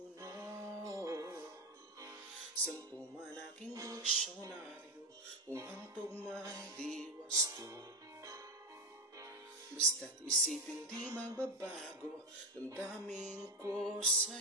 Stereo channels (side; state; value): both; normal; correlation 0.14